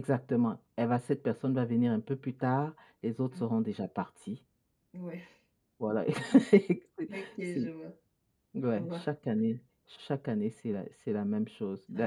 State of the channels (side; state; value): both; identical; correlation 1.00